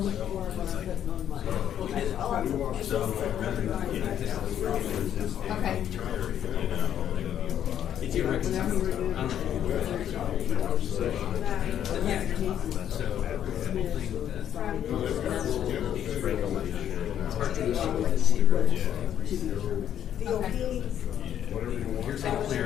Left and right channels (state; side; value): quieter; right; 10.1 dB